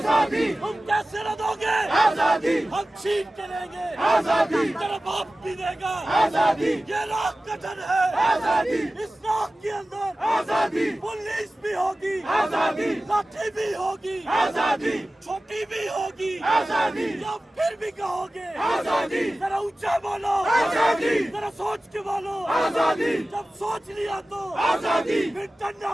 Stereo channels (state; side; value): normal; both; correlation 0.96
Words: हम कैसे न दोगे, आजादी हम छीन के लेंगे, आजादी तेरा बाप भी देगा, आजादी ये राख गठन है, आजादी इस राख के अंदर आजादी पुलिस भी होगी, आजादी लाठी भी होगी, आजादी छोटी भी होगी, आजादी जब फिर भी कहोगे आजादी जरा ऊंचा बोलो, आजादी जरा सोच के बोलो, आजादी जब सोच लिया तो आजादी फिर डरना